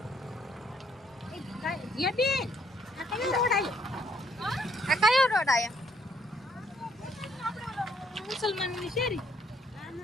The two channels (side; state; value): both; normal; correlation 0.69